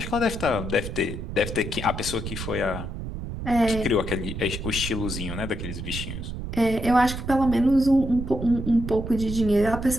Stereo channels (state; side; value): noise; right; rumble, 7 dB below the sound